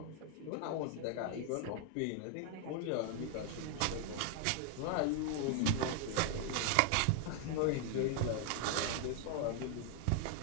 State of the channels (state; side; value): different; both; correlation 0.00